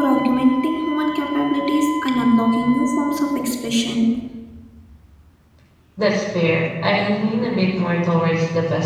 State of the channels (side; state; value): both; identical; correlation 1.00